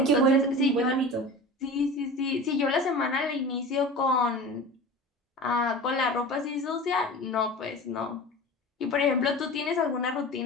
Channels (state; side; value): normal; both; correlation 0.34